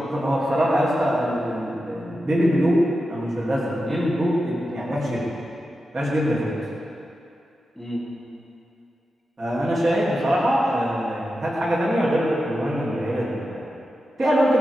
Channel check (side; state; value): both; normal; correlation 0.90